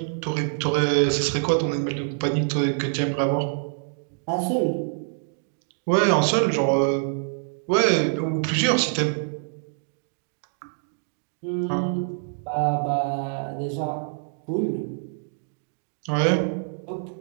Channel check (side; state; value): left; silent; digital silence